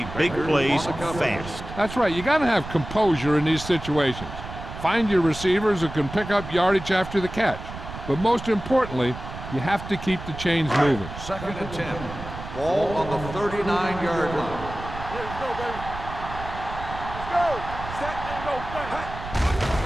big plays fast. That's right. You got to have composure in these situations. Find your receivers who can pick up yardage after the catch. But most importantly, you have to keep the chains moving. Second and 10. Ball on the 39-yard line. Let's go, baby. Let's go. Set and go.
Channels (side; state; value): right; noise; rumble, 11 dB below the sound